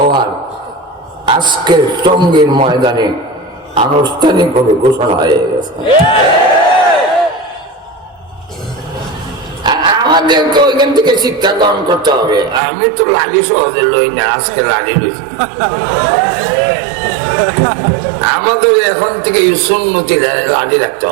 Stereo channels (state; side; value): drops out; left; at 12.6 s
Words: আজকের টঙ্গীর ময়দানে আনুষ্ঠানিকভাবে ঘোষণা হয়ে গেছে। আমাদেরকে ওইখান থেকে শিক্ষা গ্রহণ করতে হবে। আমি তো লালি সহজে লই না, আজকে লালি লইছি। আমাদের এখন থেকে সুন্নতি লালি রাখতে